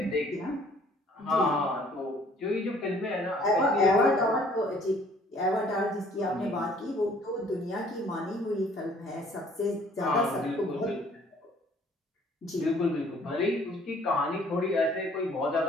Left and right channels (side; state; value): both; normal; correlation 0.58